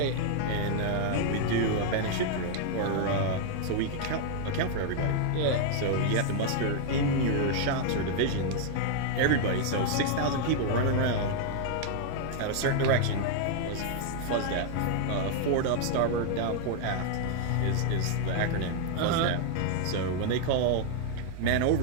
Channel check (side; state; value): both; different; correlation 0.00